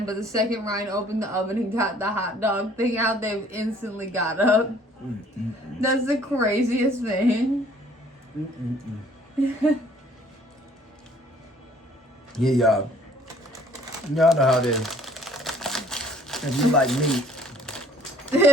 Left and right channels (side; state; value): both; normal; correlation 0.57